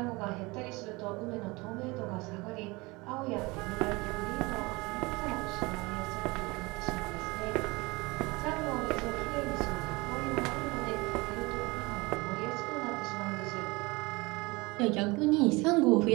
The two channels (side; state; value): left; quieter; 24.1 dB